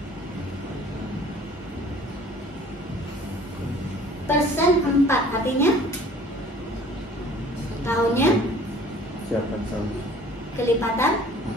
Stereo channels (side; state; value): both; normal; correlation 0.51